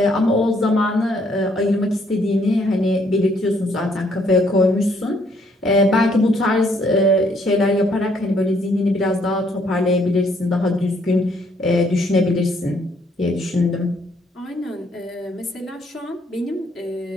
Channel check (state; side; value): normal; both; correlation 0.68